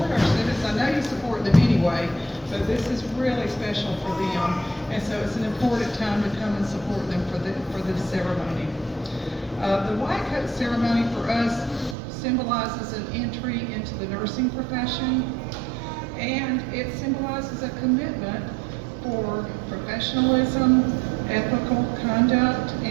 our students. I know you support them anyway, but this is really special for them. And so it's an important time to come and support them for the ceremony. The white coat ceremony for us symbolizes an entry into the nursing profession, and it symbolizes a commitment for professionalism, ethical conduct,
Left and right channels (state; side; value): drops out; left; at 12.0 s